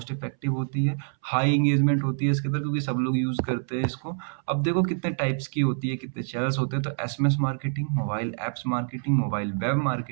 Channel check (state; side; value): silent; left; 61 dB below the other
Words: इफेक्टिव होती है, हाई एंगेजमेंट होती है इसके अंदर क्योंकि सब लोग यूज करते हैं इसको। अब देखो कितने टाइप्स की होती है, कितने चैनल्स होते हैं, तो SMS marketing, mobile apps marketing, mobile web